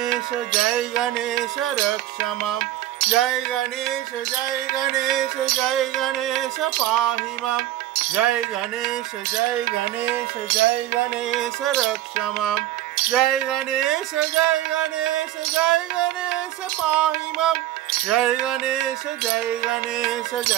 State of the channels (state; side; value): quieter; left; 14.1 dB